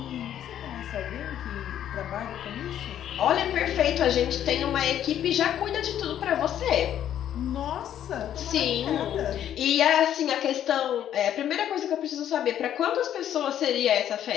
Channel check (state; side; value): quieter; right; 10.7 dB